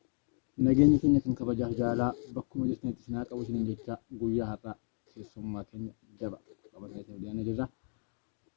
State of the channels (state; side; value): silent; right; 55 dB below the other